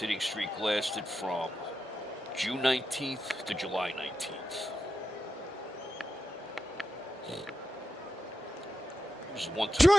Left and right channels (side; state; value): both; normal; correlation 0.89